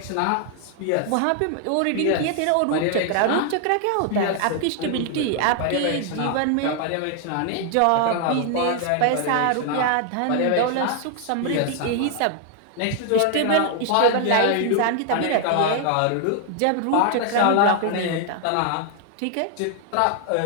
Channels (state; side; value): different; both; correlation 0.00